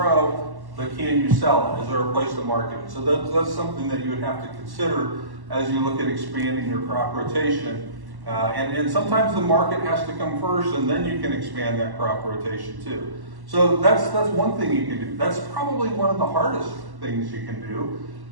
but can you sell it? Is there a place to market it? So that's something that you would have to consider as you look at expanding your crop rotation. And sometimes the market has to come first, and then you can expand that crop rotation too. So that's one thing you can do. That's probably one of the hardest things you can do,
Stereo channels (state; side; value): late; left; 1.1 ms